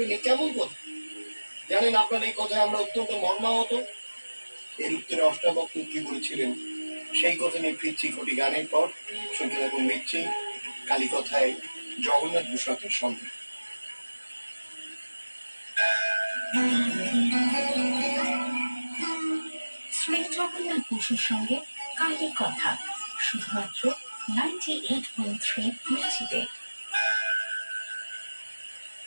এ কেমন কথা? জানেন, আপনার এই কথায় আমরা অত্যন্ত মর্মাহত। এর উত্তরে অষ্টাবক্র কি বলেছিলেন সেই কথা নিয়ে ফিরছি কোটি গানের পর। শুনতে থাকুন মির্চি কালী কথায় জগন্নাথ ভূষণের সঙ্গে। শ্রী জগন্নাথ বসুর সঙ্গে কালী কথা, শুধুমাত্র 98.3 মির্চিতে।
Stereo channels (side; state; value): both; inverted; correlation -1.00